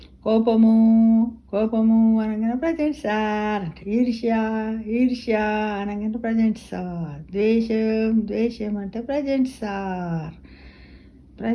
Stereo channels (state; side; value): identical; both; correlation 1.00